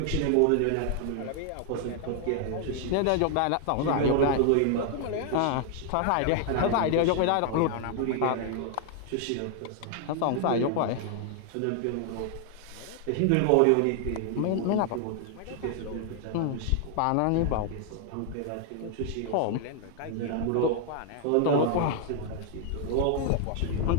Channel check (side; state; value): both; different; correlation 0.00